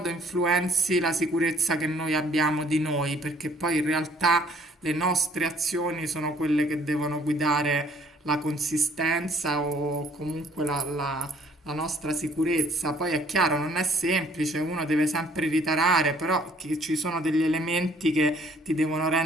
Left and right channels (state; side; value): normal; both; correlation 0.60